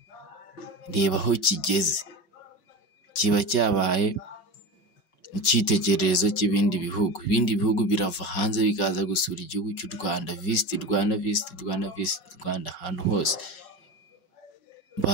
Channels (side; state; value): right; late; 5.2 ms